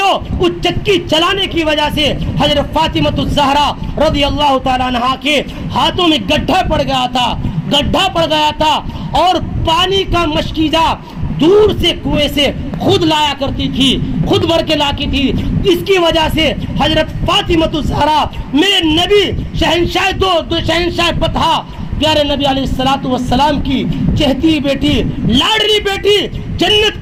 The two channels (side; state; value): both; identical; correlation 1.00